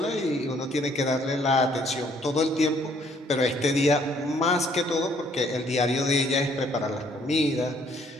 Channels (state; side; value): normal; both; correlation 0.64